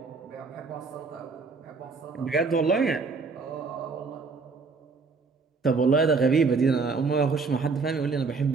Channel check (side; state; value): left; quieter; 4.5 dB